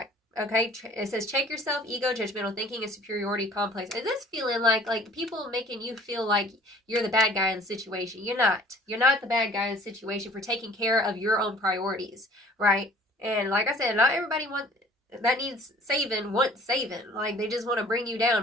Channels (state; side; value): normal; both; correlation 0.51